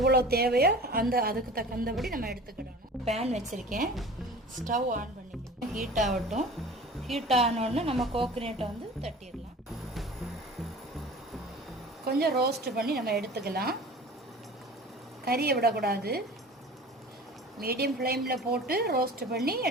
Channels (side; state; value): both; normal; correlation 0.40